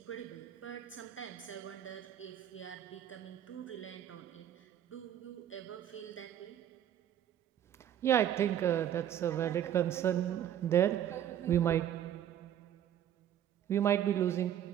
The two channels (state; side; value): quieter; left; 10.5 dB